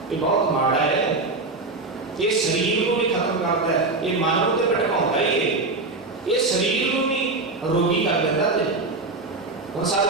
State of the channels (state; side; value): quieter; left; 3.4 dB